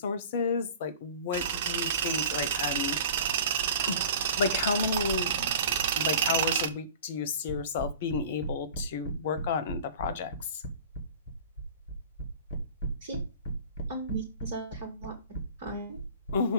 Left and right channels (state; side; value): inverted; both; correlation -0.40